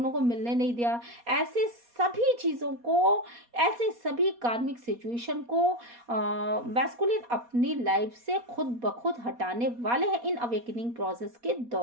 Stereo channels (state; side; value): late; left; 4.2 ms